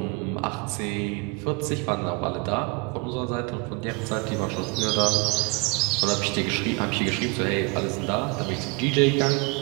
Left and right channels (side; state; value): left; quieter; 29.1 dB